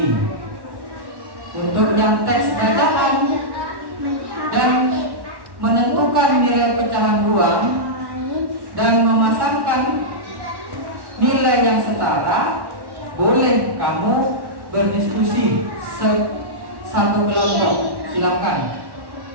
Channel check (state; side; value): late; left; 1.1 ms